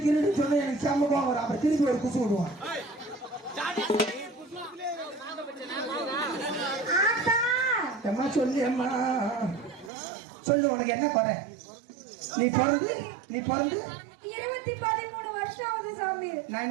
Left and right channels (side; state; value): left; drops out; at 9.9 s